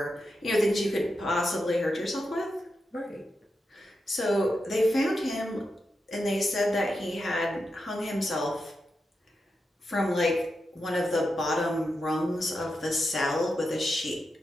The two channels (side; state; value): both; normal; correlation 0.88